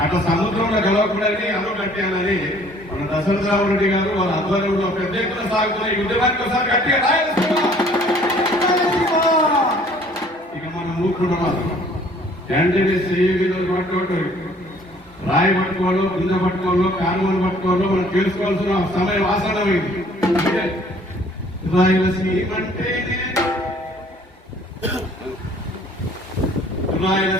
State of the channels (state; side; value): normal; both; correlation 0.56